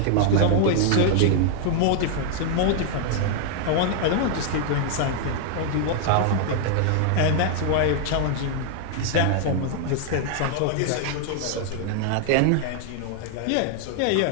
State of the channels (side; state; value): both; different; correlation 0.00